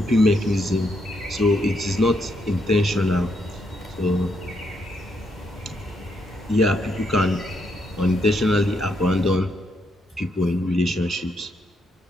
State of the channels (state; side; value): normal; both; correlation 0.77